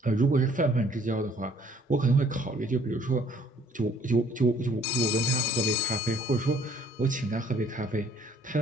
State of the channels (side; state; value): both; normal; correlation 0.59